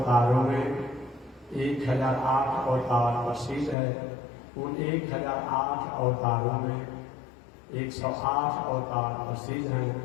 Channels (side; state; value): right; drops out; at 3.8 s